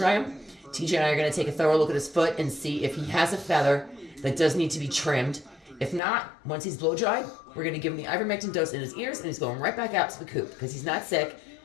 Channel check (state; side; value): drops out; right; at 6.0 s